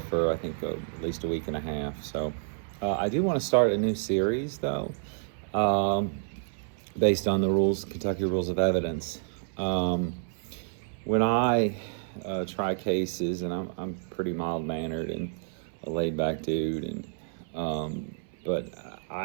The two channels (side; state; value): left; silent; 58 dB below the other